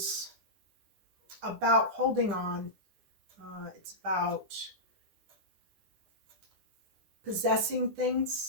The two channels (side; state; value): left; late; 9.9 ms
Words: about holding on. It's about possessing